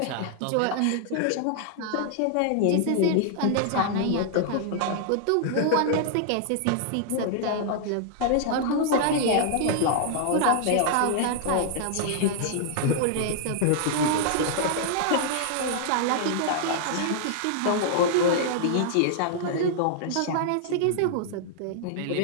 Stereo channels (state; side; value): different; both; correlation -0.01